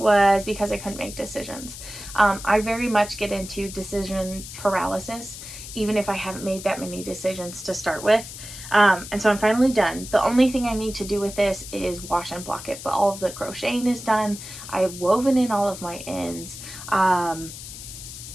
because I couldn't make decisions. I very much get into decision paralysis, even if I haven't made that many decisions to start with. And so I'm finally done. The only thing I need to do with this is wash and block it, but all of the crocheting is done. I have woven in all of my ends.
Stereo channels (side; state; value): left; noise; hiss, 12 dB below the sound